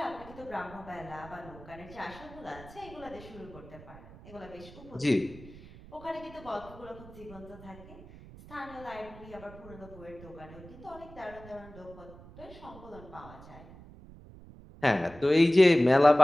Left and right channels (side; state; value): right; noise; rumble, 18 dB below the sound